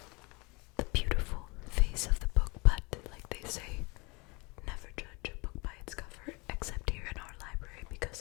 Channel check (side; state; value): right; quieter; 27.1 dB